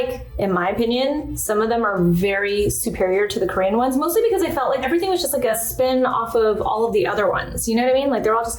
in my opinion, some of them are very superior to the Korean ones, mostly because I felt like everything was just like a spin off of all of the other ones. You know what I mean? Like they're all just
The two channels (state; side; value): identical; both; correlation 1.00